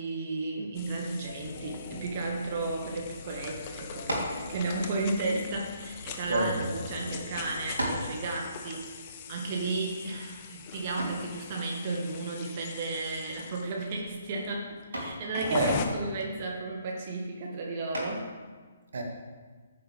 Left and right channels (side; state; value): both; inverted; correlation -0.67